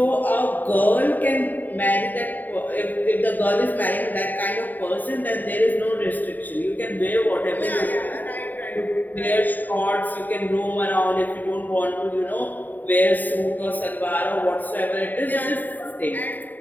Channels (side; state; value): right; late; 0.086 ms